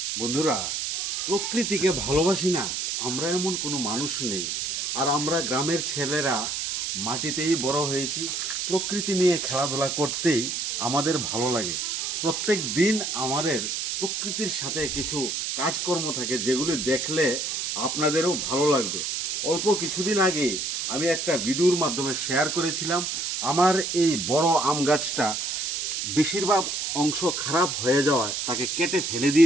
বন্ধুরা, প্রকৃতিকে ভালোবাসি না আমরা এমন কোনো মানুষ নেই। আর আমরা গ্রামের ছেলেরা মাটিতেই বড় হয়েছি, প্রকৃতি নিয়ে খেলাধুলা করতেই আমাদের ভালো লাগে। প্রত্যেক দিন আমাদের প্রকৃতির সাথে কিছু কাজকর্ম থাকে যেগুলি দেখলে আপনাদেরও ভালো লাগবে। অল্প কিছুদিন আগে আমি একটা ভিডিওর মাধ্যমে শেয়ার করেছিলাম আমার এই বড় আম গাছটা বেশিরভাগ অংশ খারাপ হয়ে যাওয়ায় তাকে কেটে ফেলে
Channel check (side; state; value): right; noise; hiss, 2 dB below the sound